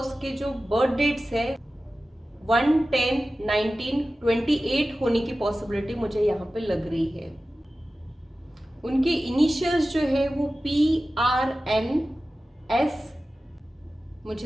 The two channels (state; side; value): normal; both; correlation 0.95